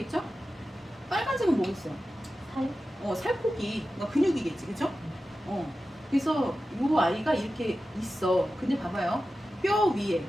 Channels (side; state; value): both; normal; correlation 0.93